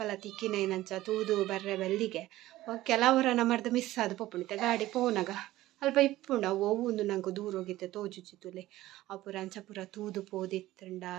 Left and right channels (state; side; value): quieter; left; 16.0 dB